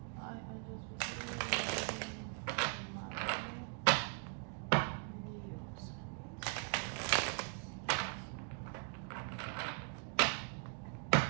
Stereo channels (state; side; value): quieter; left; 39.7 dB